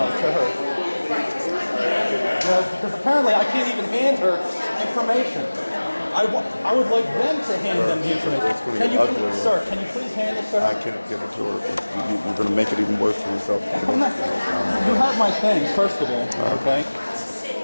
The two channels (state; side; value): inverted; both; correlation -1.00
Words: to her? Because apparently I can't even hand her information. I would like them to hand them the information. Can you, sir, can you please hand this to her? I can't give it to her. You're going to make it even worse for yourself. You have my things, first of all, okay?